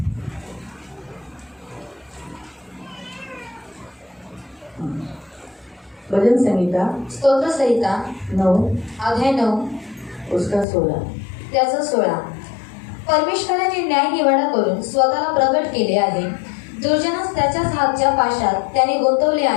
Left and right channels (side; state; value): right; drops out; at 10.7 s